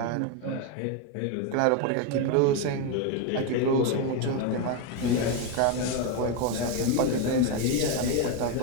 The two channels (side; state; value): both; different; correlation 0.02